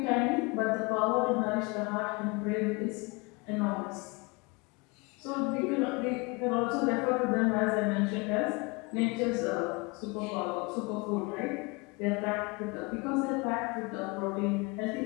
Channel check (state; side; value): quieter; right; 27.7 dB